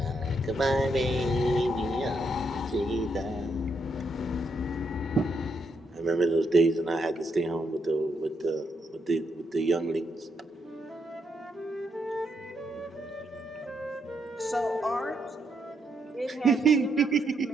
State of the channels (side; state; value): both; normal; correlation 0.78